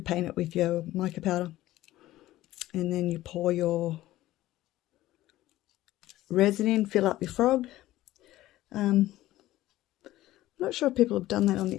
paint it with your mica powder, and then you pour your resin in, fill up your frog. I'm not sure if people have done that on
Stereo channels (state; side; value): quieter; right; 15.6 dB